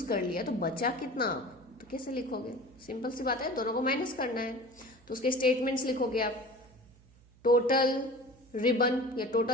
कर लिया तो बचा कितना, तो कैसे लिखोगे, सिंपल सी बात है, दोनों को माइनस करना है. तो उसके स्टेटमेंट्स लिखोगे आप. टोटल रिबन या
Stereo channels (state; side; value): noise; right; hum, 27 dB below the sound